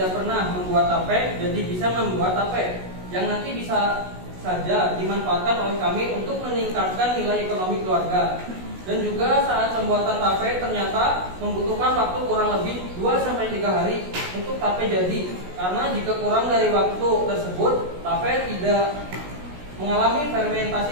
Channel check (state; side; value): late; left; 16 ms